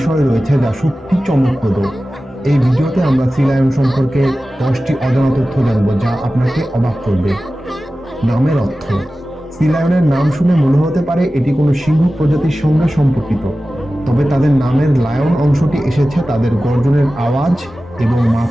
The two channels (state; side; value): normal; both; correlation 0.95